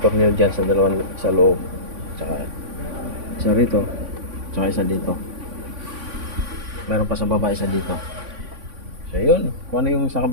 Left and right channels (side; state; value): left; late; 3.5 ms